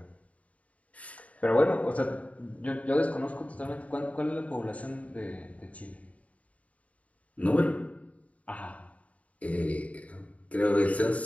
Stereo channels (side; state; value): right; late; 0.067 ms